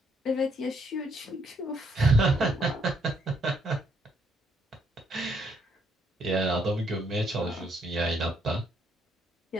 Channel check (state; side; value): normal; both; correlation 0.71